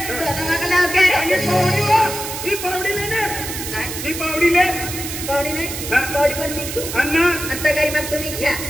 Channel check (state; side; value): noise; right; hiss, 7 dB below the sound